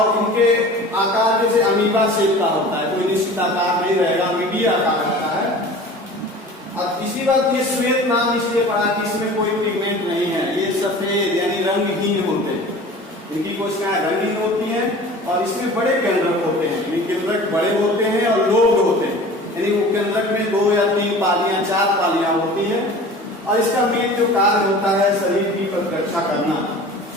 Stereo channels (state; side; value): normal; both; correlation 0.41